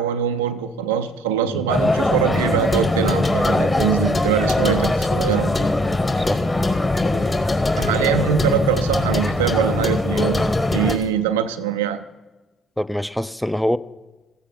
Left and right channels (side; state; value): both; normal; correlation 0.59